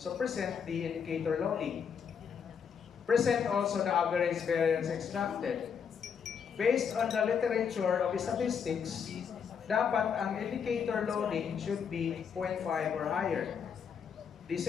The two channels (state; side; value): quieter; right; 7.0 dB